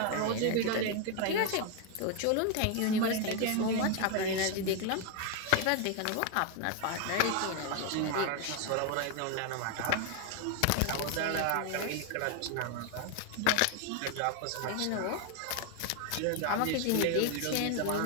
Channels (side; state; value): both; different; correlation 0.01